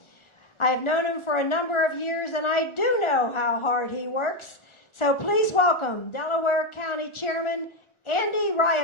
I have known him for a number of years, and I do know how hard he works. So please welcome Delaware County Chairman Andy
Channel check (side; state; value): right; late; 1.4 ms